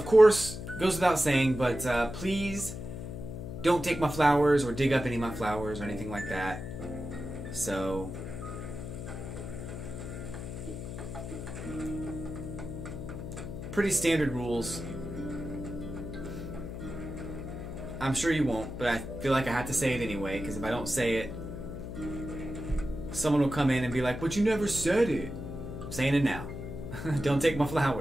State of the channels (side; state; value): left; noise; hum, 8 dB below the sound